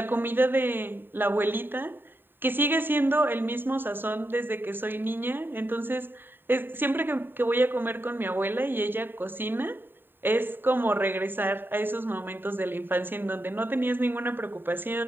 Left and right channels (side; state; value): left; late; 0.096 ms